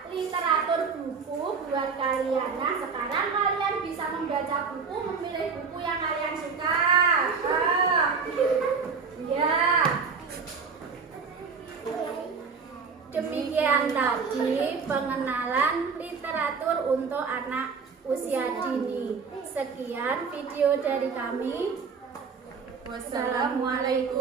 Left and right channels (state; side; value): quieter; left; 5.4 dB